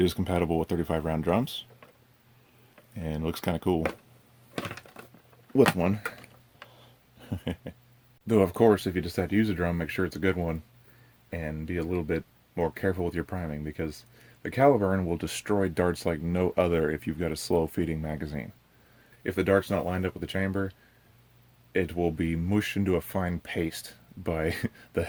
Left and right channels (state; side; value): identical; both; correlation 1.00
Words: is compatible with 35 round drums, and looks kind of cool with one. Though, of course, if you decide to use a drum, make sure it's a good one, and be a little bit more careful with your priming, because the Caliburn will destroy darts like no other if you've got a slow feeding magazine. If the dart's not lined up with the chamber, it will be mushed into a fine paste by the